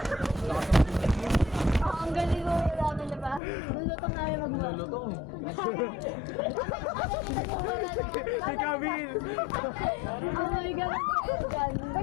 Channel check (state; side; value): drops out; right; at 3.4 s